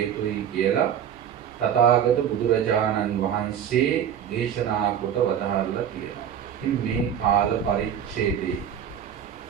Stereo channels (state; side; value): quieter; left; 9.1 dB